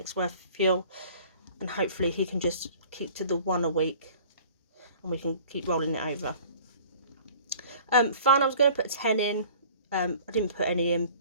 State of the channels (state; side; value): inverted; both; correlation -0.48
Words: worth of fuel, and hopefully he can just keep to the 1 a week and we can keep rolling it over. Fun, I was going to put 10 in. I didn't put any in.